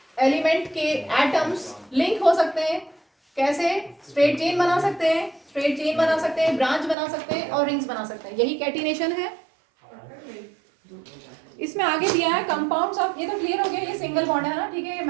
एलिमेंट के एटम्स लिंक हो सकते हैं। कैसे? स्ट्रेट चेन बना सकते हैं, ब्रांच बना सकते हैं और रिंग्स बना सकते हैं। यही कैटिनेशन है। इसमें आगे दिया है कंपाउंड्स ऑफ, ये तो क्लियर हो गया, ये सिंगल बॉन्ड है ना, ठीक है,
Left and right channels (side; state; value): left; drops out; at 7.0 s